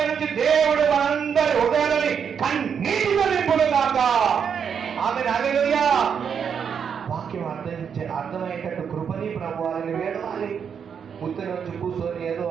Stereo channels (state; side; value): quieter; left; 7.2 dB